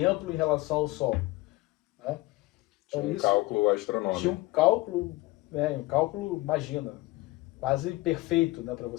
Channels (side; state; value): right; quieter; 20.5 dB